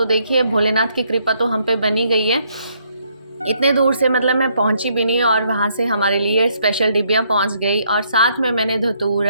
देखिए, भोलेनाथ की कृपा तो हम पे बनी गई है। इतने दूर से मतलब मैं पहुंची भी नहीं और वहाँ से हमारे लिए स्पेशल डिब्बियाँ पहुंच गई। और साथ में मैंने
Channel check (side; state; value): both; inverted; correlation -0.71